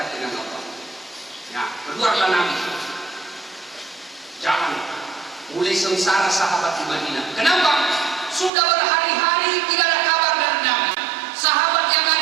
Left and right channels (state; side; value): drops out; left; at 8.5 s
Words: dengan Allah. Ya, keluarlah Nabi. Jangan mulai sengsara sahabat di Madinah. Kenapa? Sudah berhari-hari tidak ada kabar dari Nabi. Sahabat yang